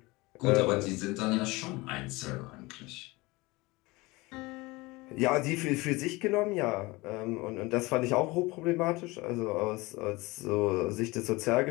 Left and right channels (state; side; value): quieter; right; 22.6 dB